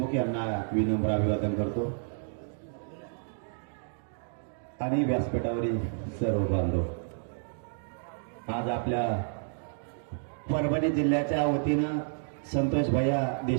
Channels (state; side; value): silent; left; digital silence